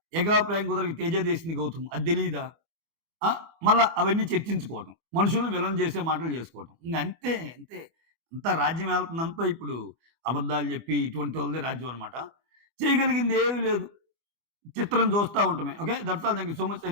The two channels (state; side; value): late; left; 24 ms